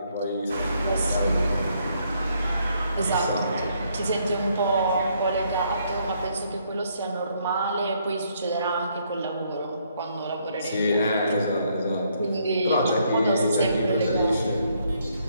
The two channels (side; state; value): both; inverted; correlation -0.71